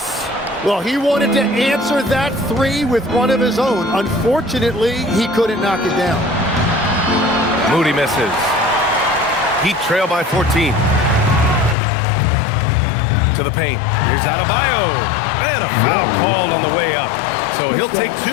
Well, he wanted to answer that 3 with one of his own. Unfortunately, he couldn't knock it down. Moody misses. Heat trail by 14. To the paint. Here's Adebayo. And a foul called on the way up. So he'll take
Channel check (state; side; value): drops out; right; at 11.8 s